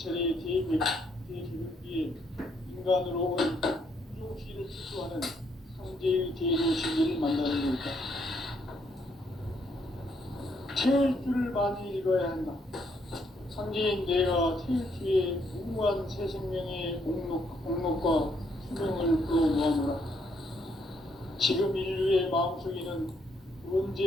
대개벽기에 인간으로 온 유종시를 추구하는 상제의 대도 진리를 만나는 데 있다. 태일주를 많이 읽어야 한다. 상제인 내가 태일주의 무궁한 새 생명의 목록과 수명을 끌어모아노라. 지금 인류의 마음속에는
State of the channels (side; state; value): both; normal; correlation 0.72